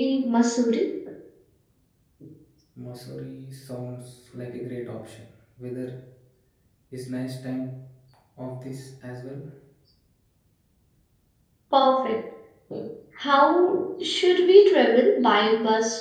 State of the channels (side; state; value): both; identical; correlation 1.00